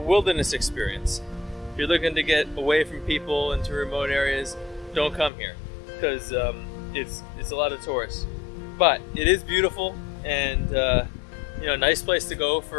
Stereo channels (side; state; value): right; drops out; at 5.3 s